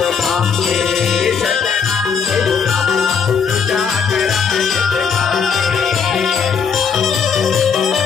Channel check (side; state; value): right; quieter; 6.3 dB